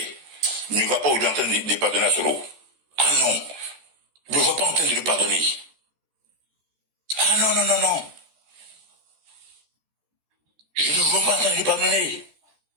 ne va pas aujourd'hui en train de pardonner à Soro. Ah non, je ne vois pas en train de le pardonner. Ah non, non, non, non. Je ne vois pas en train de le pardonner.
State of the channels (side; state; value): left; late; 13 ms